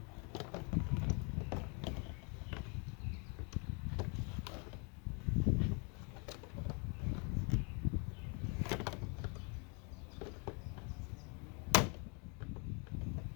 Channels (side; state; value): right; quieter; 34.9 dB